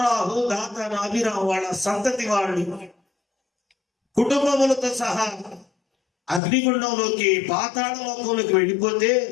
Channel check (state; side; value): drops out; right; at 6.4 s